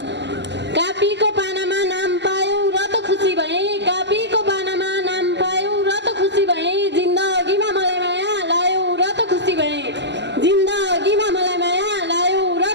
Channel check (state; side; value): late; left; 0.51 ms